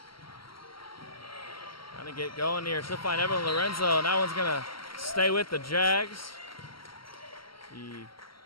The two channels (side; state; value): right; late; 0.74 ms